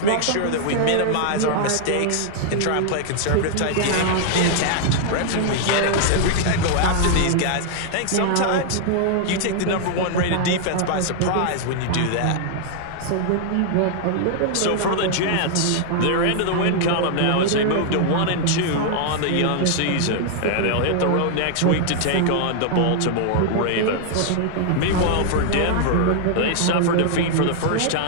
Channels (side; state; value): both; different; correlation -0.01